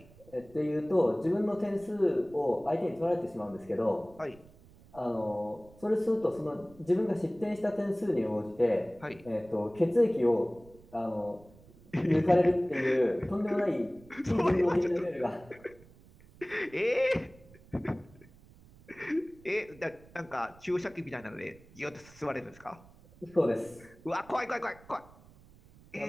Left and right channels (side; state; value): right; noise; rumble, 24 dB below the sound